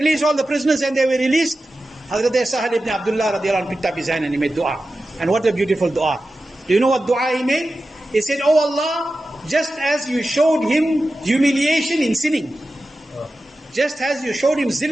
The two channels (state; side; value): normal; both; correlation 0.93